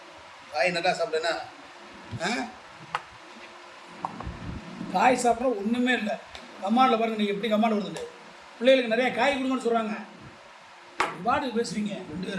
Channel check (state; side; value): identical; both; correlation 1.00